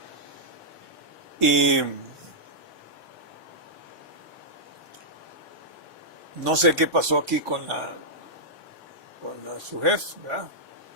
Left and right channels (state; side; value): late; left; 1.3 ms